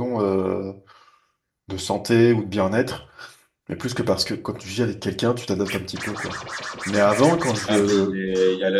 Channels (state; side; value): identical; both; correlation 1.00